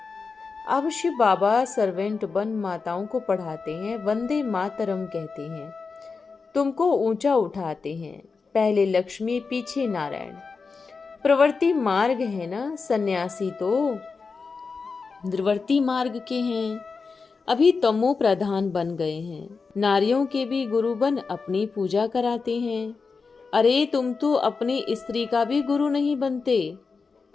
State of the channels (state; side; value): quieter; right; 4.7 dB